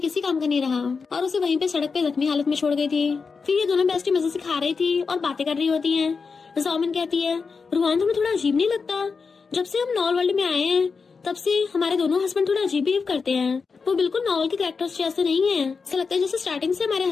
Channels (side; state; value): right; quieter; 5.0 dB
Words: काम का नहीं रहा, और उसे वहीं पे सड़क पे जख्मी हालत में छोड़ गई थी। फिर ये दोनों बेस्टी मजे से खा रही थी और बातें कर रही होती हैं। जामिन कहती है रुआन तुम्हें थोड़ा अजीब नहीं लगता, जब से हम नॉल वर्ल्ड में आए हैं तब से हमारे दोनों हस्बैंड थोड़ा अजीब बिहेव करते हैं, वो बिल्कुल नॉवल के कैरेक्टर्स जैसे नहीं है, ऐसा लगता है जैसे स्टार्टिंग से हमारे